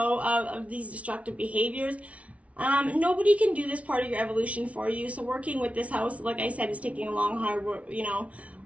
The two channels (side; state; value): left; late; 0.065 ms